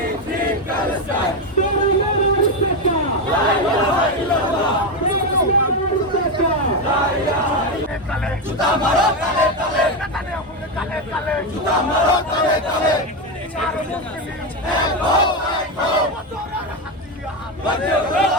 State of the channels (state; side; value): normal; both; correlation 0.11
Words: Free Palestine. La ilaha illallah. Juta maro tale tale. Juta maro tale tale.